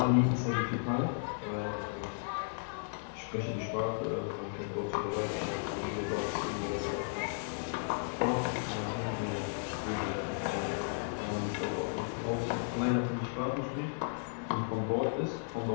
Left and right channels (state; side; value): silent; right; 55 dB below the other